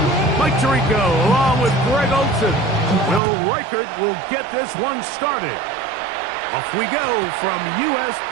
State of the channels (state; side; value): drops out; left; at 3.2 s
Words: Tirico, along with Greg Olsen. Will Reichert will get this one started. Off we go from US